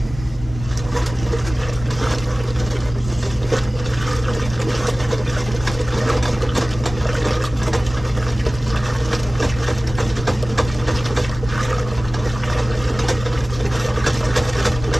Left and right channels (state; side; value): noise; left; rumble, 12 dB below the sound